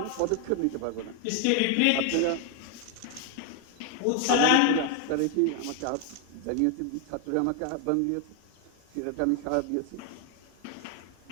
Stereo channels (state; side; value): different; both; correlation 0.00